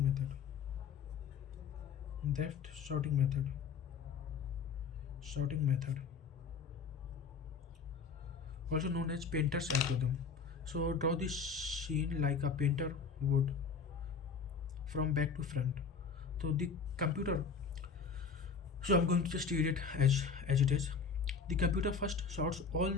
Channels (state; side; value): quieter; right; 5.5 dB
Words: method. Depth sorting method. Sorting method. Also known as painter's algorithm. So draw the scene like a painter would from back to front. So the computer, so I'm going to just read it as it is. The computer first sorts all